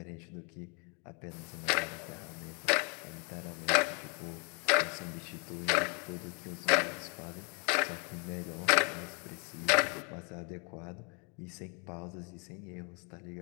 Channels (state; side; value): quieter; right; 35.1 dB